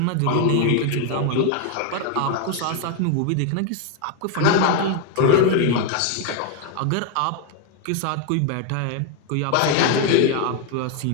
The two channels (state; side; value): different; both; correlation 0.01